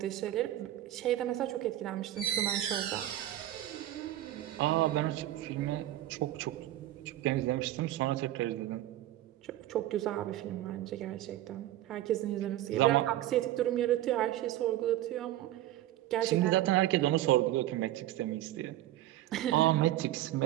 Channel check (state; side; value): quieter; left; 14.1 dB